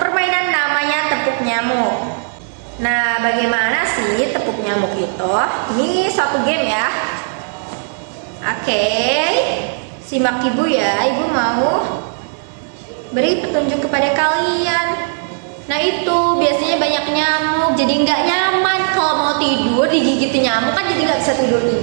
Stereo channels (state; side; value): silent; left; digital silence